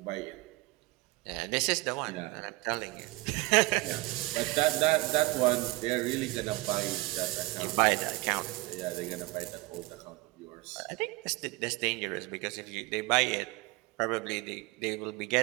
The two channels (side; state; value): left; quieter; 22.3 dB